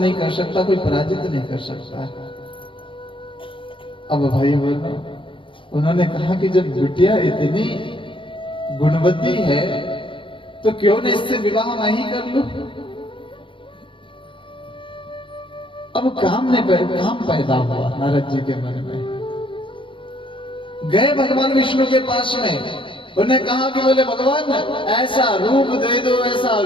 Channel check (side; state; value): right; late; 0.25 ms